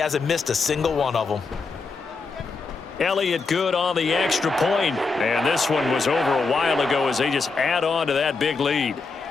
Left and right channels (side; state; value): right; quieter; 4.2 dB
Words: missed a single one of them. Elliott good on the extra point. And this one was over a while ago as they just add on to that big lead.